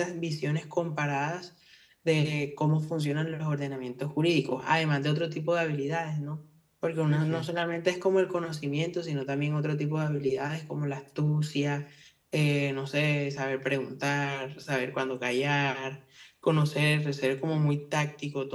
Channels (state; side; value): identical; both; correlation 1.00